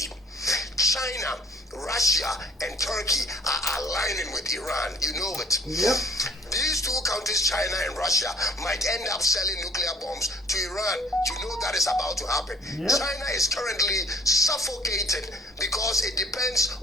China, Russia, and Turkey are aligning with Iran. You know it. Yep. These two countries, China and Russia, might end up selling nuclear bombs to Iran. You know that is about to happen. Yep. China is currently suffocated because it depends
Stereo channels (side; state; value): both; normal; correlation 0.55